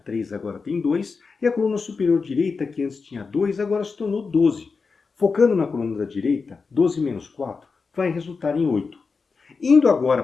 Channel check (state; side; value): quieter; right; 4.7 dB